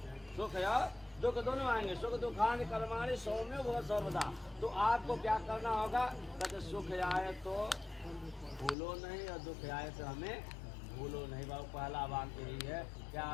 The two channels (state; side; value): drops out; right; at 8.8 s